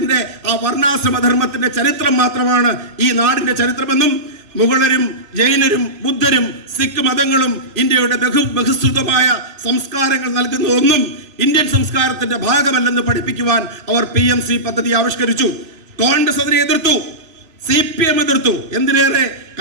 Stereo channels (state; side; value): late; left; 3.0 ms